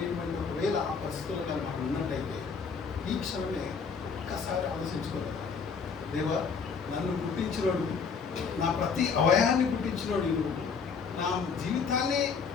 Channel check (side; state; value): right; quieter; 5.7 dB